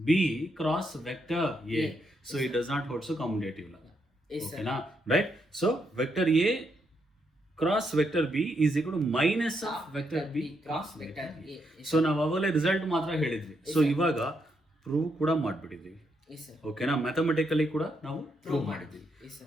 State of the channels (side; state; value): both; normal; correlation 0.78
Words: B cross vector A. So it does not holds commutative. ಓಕೆನಾ? Right. So vector A cross vector B is equal to minus of vector B cross vector A. So ನಾವು ಅವಾಗಲೇ result ಮಾತ್ರ ಹೇಳಿದ್ವಿ. So ಇವಾಗ prove ಕೂಡ ಮಾಡಿಬಿಟ್ಟಿದ್ದೀವಿ. Yes sir. ಓಕೆನಾ, mathematically ಕೂಡ ನಾವು ಪ್ರೂವ್ ಮಾಡಿದ್ದೀವಿ.